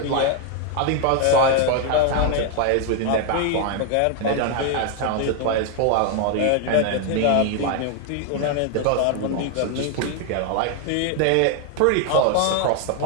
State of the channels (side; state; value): both; different; correlation 0.01